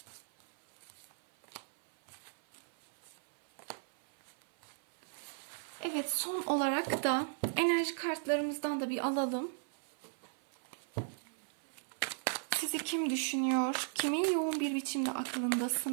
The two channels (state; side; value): silent; left; 53 dB below the other